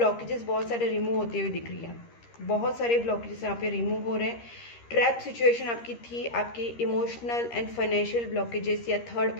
बहुत सारे remove होते हुए दिख रही है, बहुत सारे ब्लॉकेजेस यहाँ पे रिमूव हो रहे हैं। ट्रैप सिचुएशन आपकी थी, आपकी इमोशनल एंड फाइनेंशियल ब्लॉकेजेस या थर्ड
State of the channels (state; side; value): late; right; 13 ms